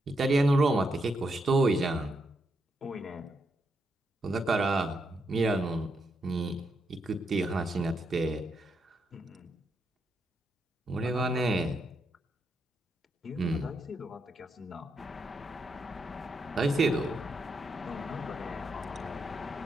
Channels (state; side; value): normal; both; correlation 0.81